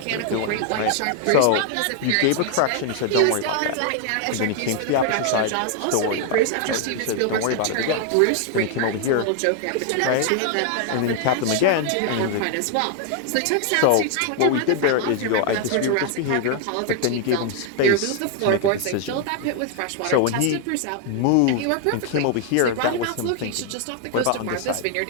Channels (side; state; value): both; different; correlation 0.00